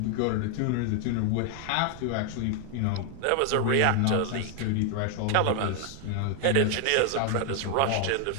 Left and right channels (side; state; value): both; different; correlation 0.00